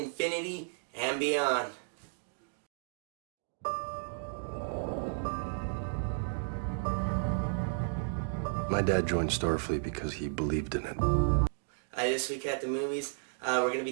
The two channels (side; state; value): left; silent; digital silence